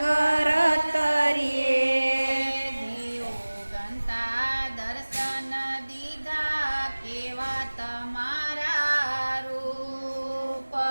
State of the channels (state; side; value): inverted; both; correlation -1.00